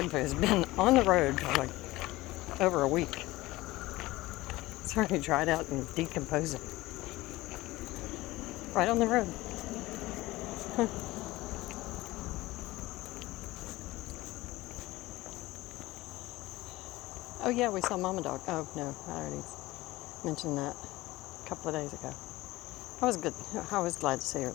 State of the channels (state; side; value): quieter; right; 18.8 dB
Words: food has been on the road for like over a week. It's already dried out and decomposing. Right on the road. Huh. Oh yeah, we saw Mama Dog. Oh no, I already mentioned that a couple of days ago. I was good. I was glad to see her